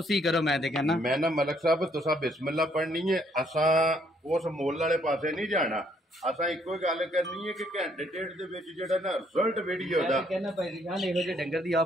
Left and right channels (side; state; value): both; normal; correlation 0.68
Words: करो मैं ते कहना मैं ना मलक साहब तुसा बिस्मिल्लाह पढ़नी है असा उस मोल वाले पासे नहीं जाना असा इको गल करनी है कि घंटे डेढ़ दे विच जेड़ा ना रिजल्ट वीडियो दा कहना भाई दी शान ਇਹੋ ਜਿਹੇ ਡੰਗਰ ਦੀ